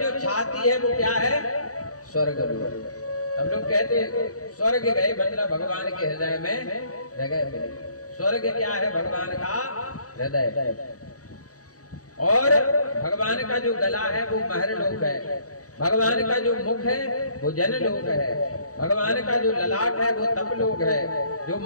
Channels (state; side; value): late; right; 0.66 ms